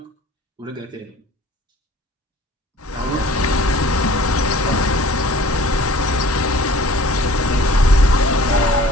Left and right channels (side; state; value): both; normal; correlation 0.49